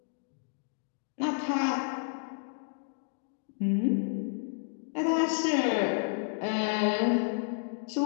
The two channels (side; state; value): right; silent; digital silence